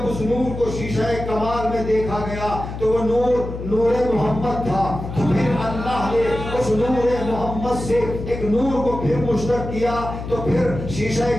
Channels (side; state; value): left; noise; hum, 8 dB below the sound